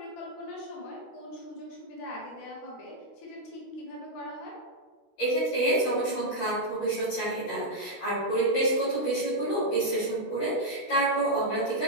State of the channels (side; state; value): right; late; 16 ms